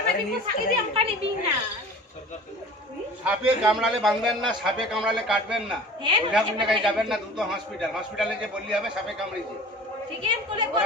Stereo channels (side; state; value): both; normal; correlation 0.41